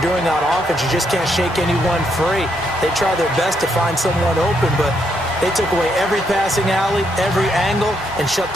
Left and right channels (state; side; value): normal; both; correlation 0.76